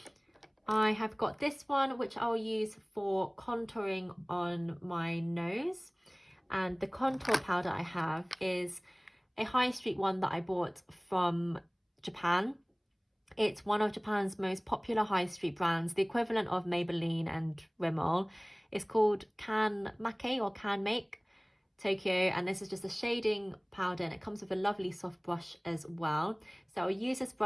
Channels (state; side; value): identical; both; correlation 1.00